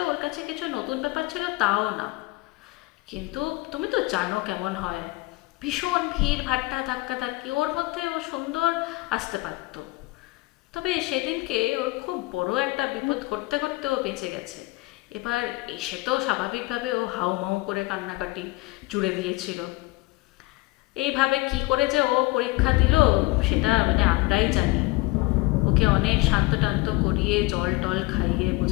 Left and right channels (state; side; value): quieter; right; 22.2 dB